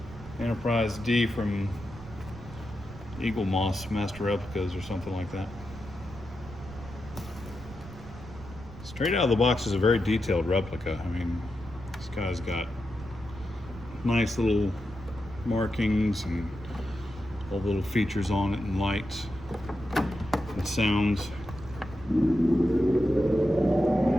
Enterprise D from Eagle Moss Master Replicas or something like that. Straight out of the box is a very detailed replica. I mean, this guy's got nice little markings and all the little features on it, and lights and sounds.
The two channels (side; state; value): right; noise; rumble, 15 dB below the sound